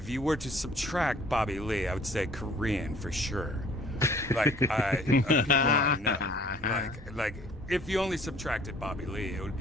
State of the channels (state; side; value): normal; both; correlation 0.55